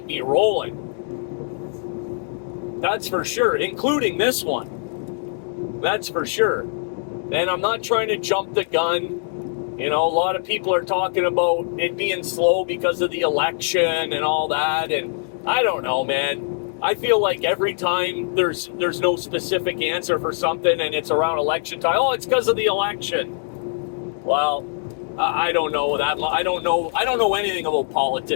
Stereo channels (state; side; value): silent; right; digital silence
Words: me rolling. That's for sure, including this one. That's for sure. And I'm not trying to jump the gun. A lot of people are talking about it being slow because of the election and all that. And I don't know, man. I feel like every time there's no specific answer for something and it's around election time, oh, it's because of the election. Well, I don't know that. I don't know anything about